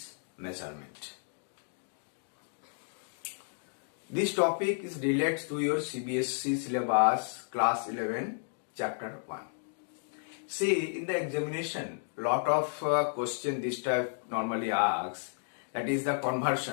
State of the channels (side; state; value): right; silent; digital silence